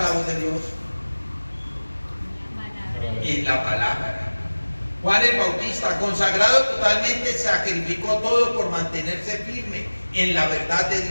voz de Dios? En la palabra. Juan el Bautista, consagrado totalmente, sacrificó todo por mantenerse firme en la verdad de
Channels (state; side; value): inverted; both; correlation -1.00